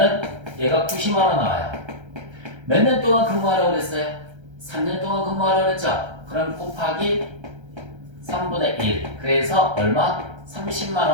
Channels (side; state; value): left; late; 1.3 ms